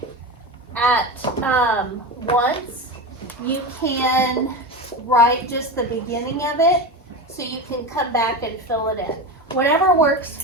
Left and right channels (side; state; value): both; normal; correlation 0.22